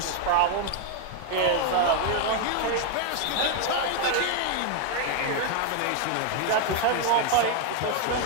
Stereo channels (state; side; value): different; both; correlation 0.00